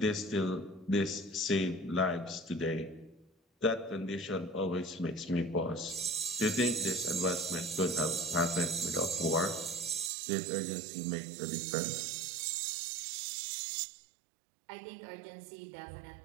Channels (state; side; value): drops out; left; at 10.1 s